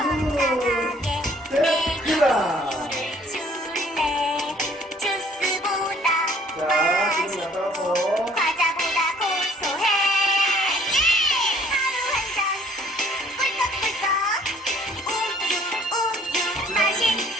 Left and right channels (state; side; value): normal; both; correlation 0.58